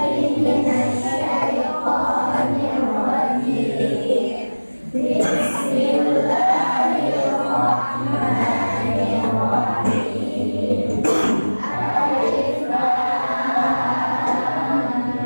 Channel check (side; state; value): both; inverted; correlation -1.00